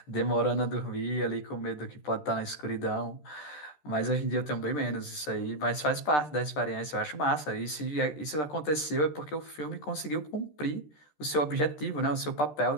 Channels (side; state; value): right; late; 13 ms